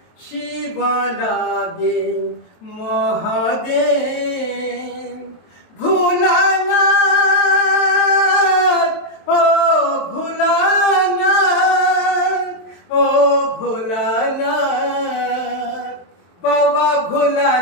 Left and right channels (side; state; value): right; late; 23 ms